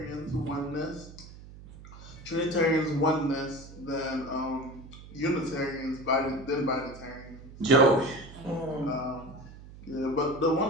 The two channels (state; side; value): noise; right; hum, 17 dB below the sound